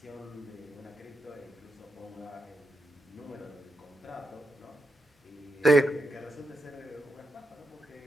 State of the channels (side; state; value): both; normal; correlation 0.85